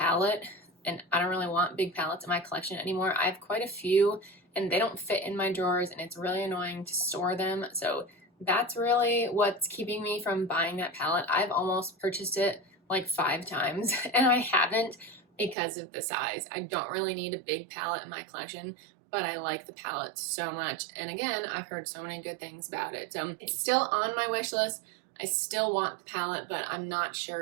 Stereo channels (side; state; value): left; drops out; at 15.6 s